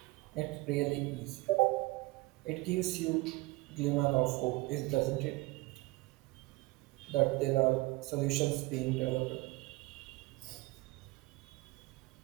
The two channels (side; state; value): left; quieter; 21.6 dB